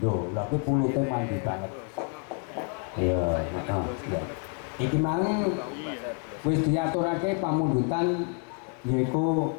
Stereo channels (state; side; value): quieter; right; 36.8 dB